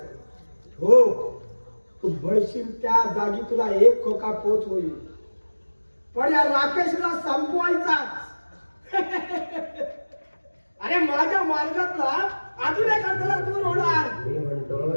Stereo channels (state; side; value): inverted; both; correlation -1.00